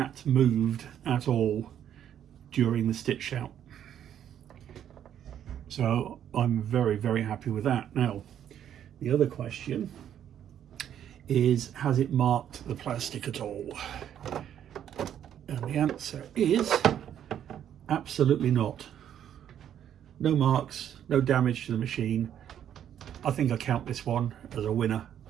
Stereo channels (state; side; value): quieter; left; 10.0 dB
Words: moved at all during the stitch out. So I'm very, very happy with that. Now, the other question is, has it marked the plastic at all? And the answer is absolutely not. No marks, no damage to the machine. I think I count this one as a winner.